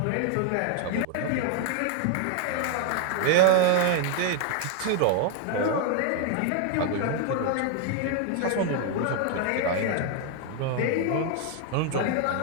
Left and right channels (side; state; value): both; different; correlation 0.01